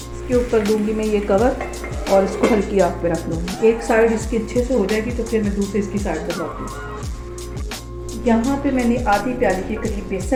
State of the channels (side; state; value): both; identical; correlation 1.00